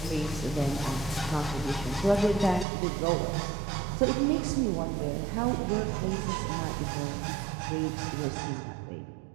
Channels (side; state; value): left; drops out; at 2.7 s